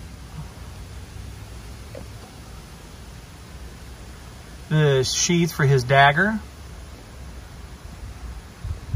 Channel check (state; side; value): identical; both; correlation 1.00